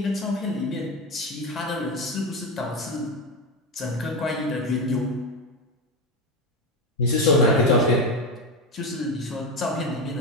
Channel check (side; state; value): both; normal; correlation 0.16